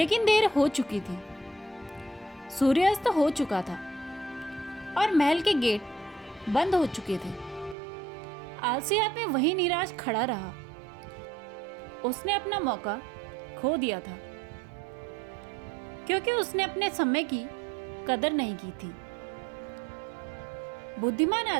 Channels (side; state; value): left; drops out; at 7.8 s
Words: देर हो चुकी थी। सूर्यास्त हो चुका था और महल के गेट बंद हो चुके थे। आलसी आदमी वहीं निराश खड़ा रहा। उसने अपना मौका खो दिया था क्योंकि उसने अपने समय की कदर नहीं की थी। बुद्धिमान